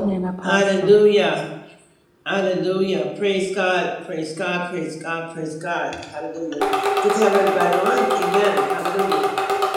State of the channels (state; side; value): identical; both; correlation 1.00